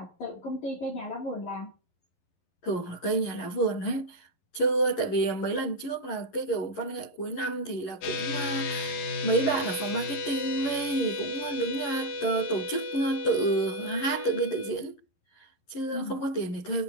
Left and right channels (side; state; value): right; late; 11 ms